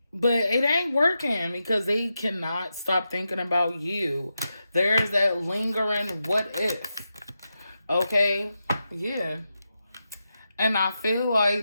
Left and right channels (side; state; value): both; inverted; correlation -0.88